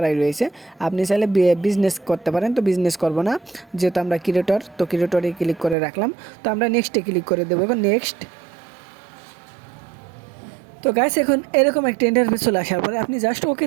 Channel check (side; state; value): left; drops out; at 5.8 s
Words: রয়েছে, আপনি চাইলে বিজনেস করতে পারেন। তো বিজনেস করব না, যেহেতু আমরা ক্রিয়েটর, তো ক্রিয়েটরে ক্লিক করে রাখলাম। তো আমরা নেক্সটে ক্লিক করে দেবো, এখন নেক্সট। তো গাইস এখন এরকম একটা ইন্টারফেস চলে আসার পরে আপনি জাস্ট